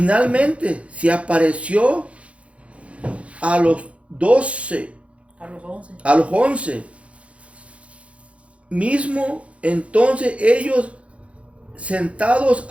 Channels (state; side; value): late; left; 0.062 ms